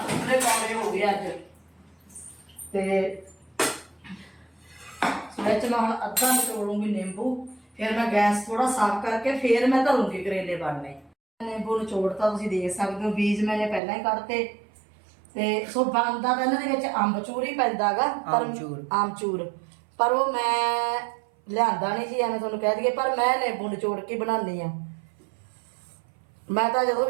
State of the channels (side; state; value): left; drops out; at 13.8 s